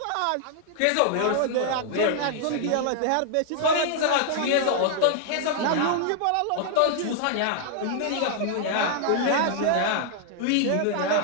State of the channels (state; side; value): different; both; correlation 0.00